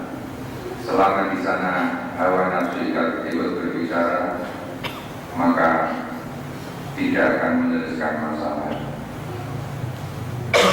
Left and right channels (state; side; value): identical; both; correlation 1.00